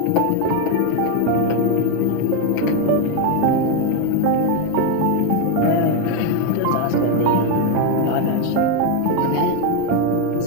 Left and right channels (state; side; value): different; both; correlation 0.01